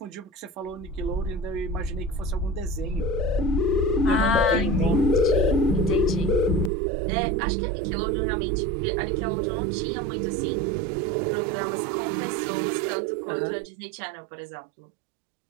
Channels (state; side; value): drops out; left; at 6.7 s